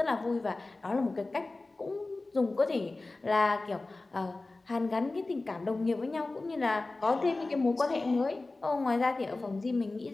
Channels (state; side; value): quieter; right; 3.2 dB